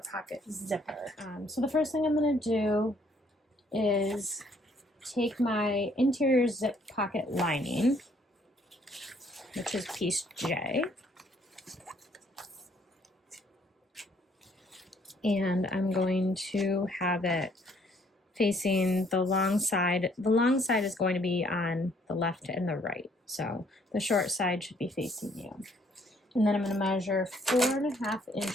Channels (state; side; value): normal; both; correlation 0.65